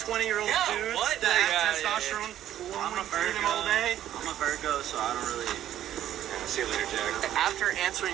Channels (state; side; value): quieter; left; 11.8 dB